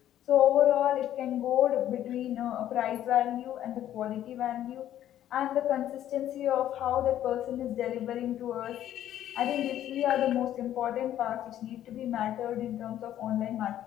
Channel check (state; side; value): quieter; right; 11.8 dB